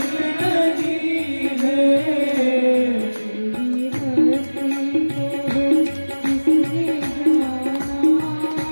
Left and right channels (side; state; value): both; inverted; correlation -1.00